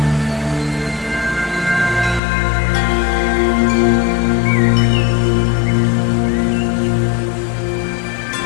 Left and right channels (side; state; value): right; drops out; at 2.2 s